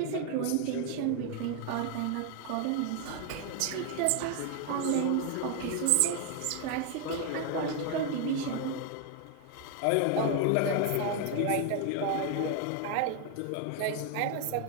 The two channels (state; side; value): different; both; correlation 0.00